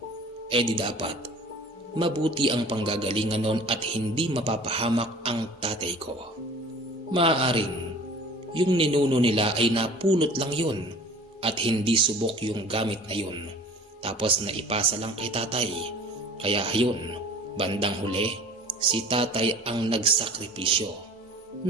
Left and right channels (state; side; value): normal; both; correlation 0.45